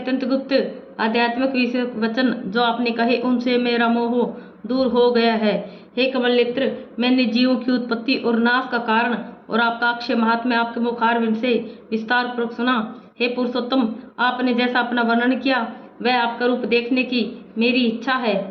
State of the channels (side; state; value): both; identical; correlation 1.00